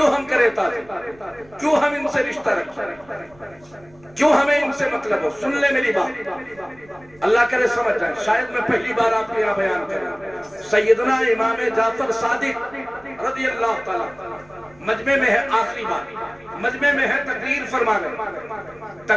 ہم کرے تعظیم, کیوں ہم ان سے رشتہ رکھیں, کیوں ہمیں ان سے مطلب ہو. سن لے میری بات, اللہ کرے سمجھ جائیں. شاید میں پہلی بار آپ کے یہاں بیان کر رہا ہوں. سیدنا امام جعفر صادق رضی اللہ تعالیٰ مجمع میں ہے, آخری بات مجمع میں ہے, تقریر فرما رہے.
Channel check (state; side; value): noise; right; rumble, 27 dB below the sound